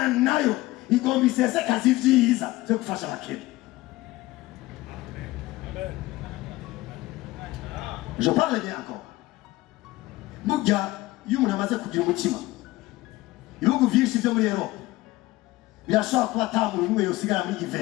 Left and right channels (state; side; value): quieter; right; 18.6 dB